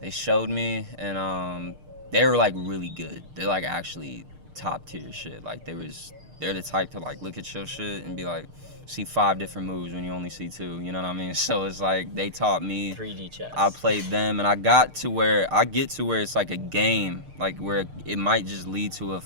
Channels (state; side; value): late; left; 6.6 ms